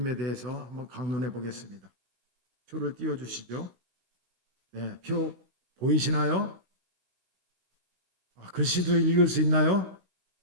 대해서 한번 강론해 보겠습니다. 표를 띄워주시죠. 네, 표 보이시나요? 글씨도 읽을 수 있나요?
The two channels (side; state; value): left; late; 16 ms